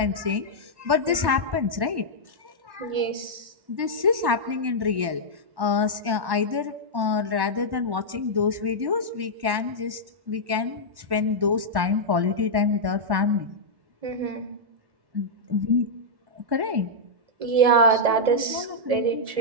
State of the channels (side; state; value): left; late; 1.1 ms